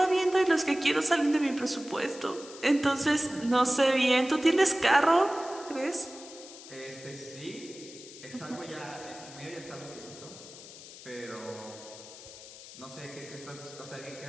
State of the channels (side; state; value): left; noise; hiss, 16 dB below the sound